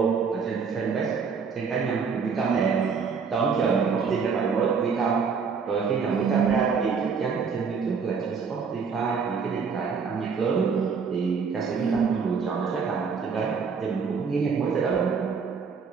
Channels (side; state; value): left; quieter; 5.6 dB